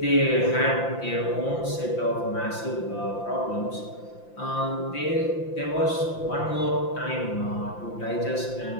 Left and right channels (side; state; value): right; late; 5.8 ms